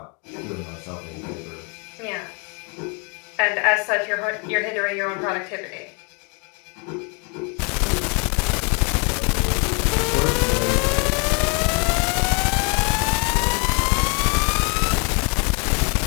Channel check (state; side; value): quieter; right; 34.3 dB